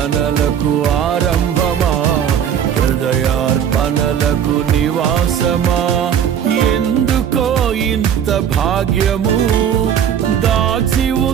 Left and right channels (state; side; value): quieter; left; 8.9 dB